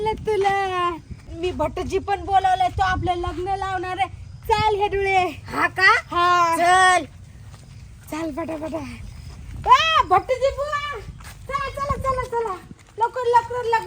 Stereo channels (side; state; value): both; identical; correlation 1.00